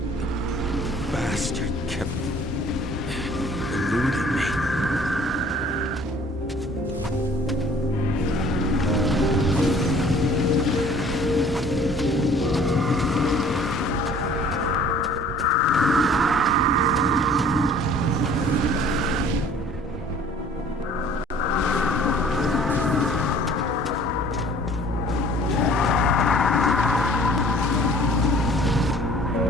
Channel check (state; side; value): normal; both; correlation 0.52